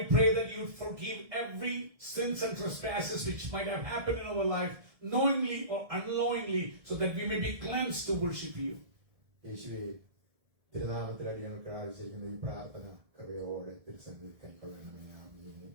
pray that you forgive every sins and trespasses which might have happened in our life, knowingly or unknowingly, so that we may be cleansed to worship you. യേശുവേ, തിരുനാമത്തിൽ അടിയങ്ങൾക്ക് ആവശ്യിക്കുന്ന ഈ പ്രാർത്ഥന കൃപയോടെ തിരുസന്നിധിയിൽ കൈക്കൊള്ളണമേ.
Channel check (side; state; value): left; late; 1.7 ms